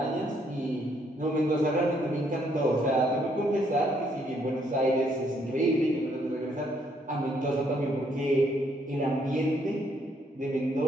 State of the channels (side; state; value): both; normal; correlation 0.70